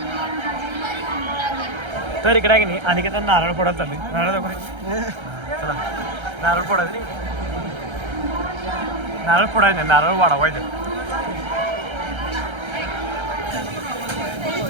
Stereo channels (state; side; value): late; left; 1.3 ms